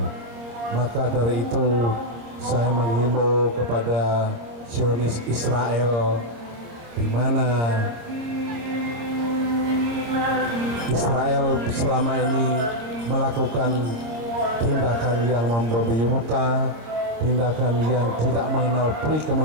Maka dari itu saya menghimbau kepada Zionis Israel, di mana Israel selama ini melakukan tindakan yang membabi buta, tindakan yang tidak mengenal peri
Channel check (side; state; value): left; late; 26 ms